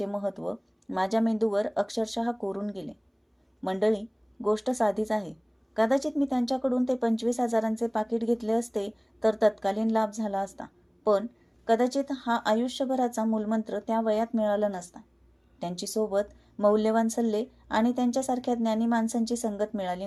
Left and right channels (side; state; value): both; identical; correlation 1.00